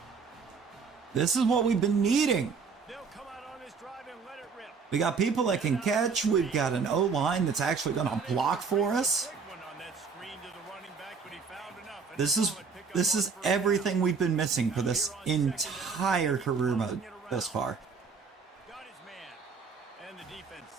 This is what we've been needing. They'll come out on this drive and let it rip. We got people that can catch. We've got an O-line that's actually going to block for us. This is everything we've been missing for this entire career mode thus far. Got his man. And the defense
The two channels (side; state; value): left; quieter; 5.3 dB